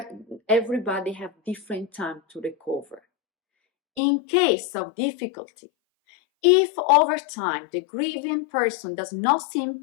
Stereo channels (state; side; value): drops out; right; at 4.0 s